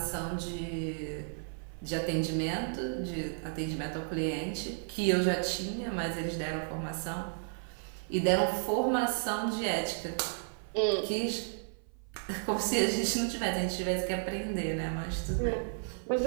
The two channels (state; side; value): silent; left; 56 dB below the other